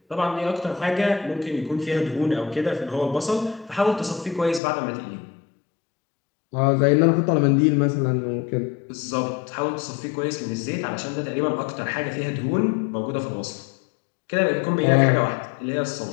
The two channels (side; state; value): right; drops out; at 4.6 s